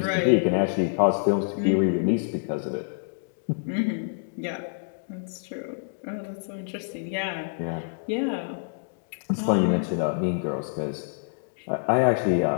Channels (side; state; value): right; silent; digital silence